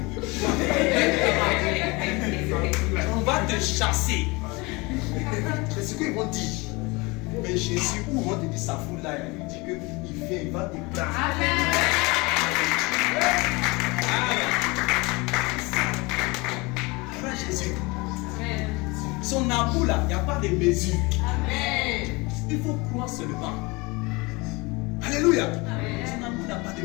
On va te chasser. C'est ce qu'ils vont dire. Mais Jésus, où vont te dire ça fout là, il dit qu'il vient, il va te prendre. Amen. Amen. Jésus. Son amour là, il n'y a pas de mesure. Amen. Il faut croire seulement. Alléluia. Amen. Son amour n'a pas de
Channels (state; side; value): quieter; right; 25.4 dB